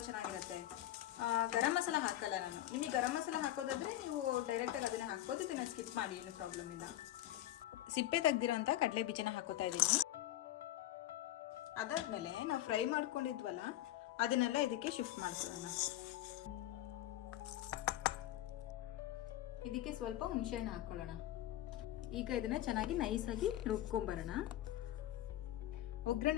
ಚೆನ್ನಾಗಿರುತ್ತೆ. ಗರಂ ಮಸಾಲ ಹಾಕಲ್ಲ ನಾನು. ನಿಮಗೆ ಗರಂ ಮಸಾಲ ಹಾಕೋದಾದ್ರೆ ನೀವು ಡೈರೆಕ್ಟಾಗಿ ಅದನ್ನ ಹಾಕ್ಬೋದು, ಇದನ್ನ ಸ್ಕಿಪ್ ಮಾಡಿ, ಏನು ಪ್ರಾಬ್ಲಮ್ ಇಲ್ಲ. ಸಿಪ್ಪೆ ತೆಗ್ದಿರೋಂಥ ಕಡಲೆ ಬೀಜನ ಹಾಕೋತಾ ಇದ್ದೀನಿ. ಅದಾದ್ಮೇಲೆ ನಾವು ಫ್ರೈ ಮಾಡ್ಕೊಂಡಿದ್ವಲ್ಲ, ಅದನ್ನೆಲ್ಲ ಇದಕ್ಕೆ ಶಿಫ್ಟ್ ಮಾಡ್ಕೊಳ್ಳೋಣ. ಇದಕ್ಕೆ ಸ್ವಲ್ಪ ಹುಣಸೆಹಣ್ಣು ಹಾಕೊಳ್ಳೋಣ. ಈಗ ಇದನ್ನ ಚೆನ್ನಾಗಿ ನೈಸಾಗಿ ರುಬ್ಕೊಂಬರೋಣ.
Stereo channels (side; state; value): right; quieter; 13.8 dB